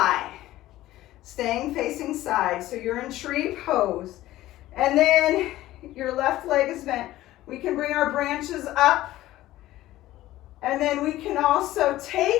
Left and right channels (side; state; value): right; quieter; 15.5 dB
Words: Staying facing side. So you're in tree pose. And then your left leg is bent. We can bring our branches up. And then we can also